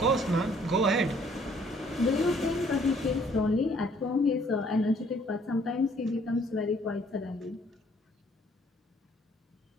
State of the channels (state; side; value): normal; both; correlation 0.62